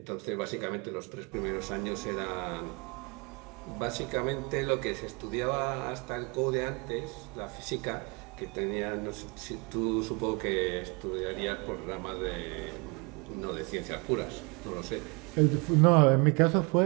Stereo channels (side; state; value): left; quieter; 30.4 dB